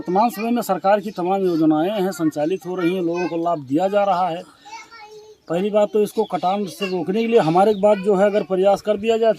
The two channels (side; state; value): both; identical; correlation 1.00